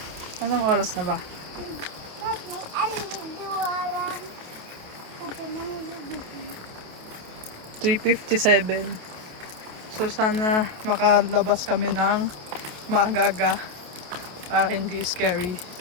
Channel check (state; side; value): late; left; 28 ms